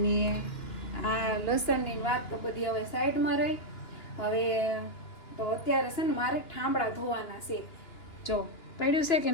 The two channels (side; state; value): right; late; 2.9 ms